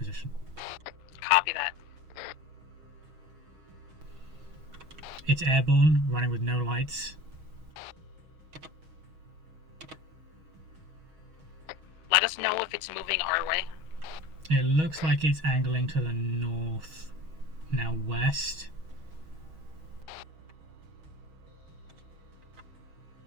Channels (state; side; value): late; left; 6.3 ms